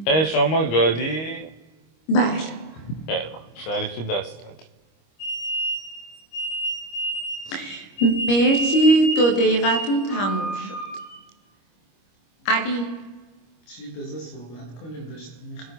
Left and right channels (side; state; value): right; late; 25 ms